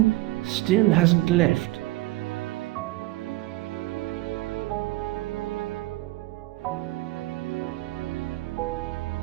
still hasn't left.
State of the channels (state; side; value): quieter; left; 19.3 dB